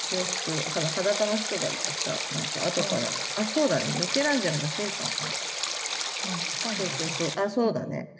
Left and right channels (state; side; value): identical; both; correlation 1.00